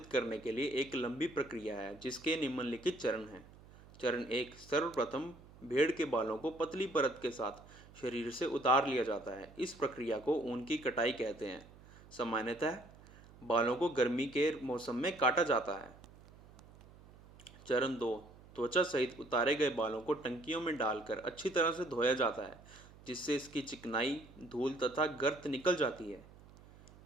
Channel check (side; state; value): right; noise; hum, 22 dB below the sound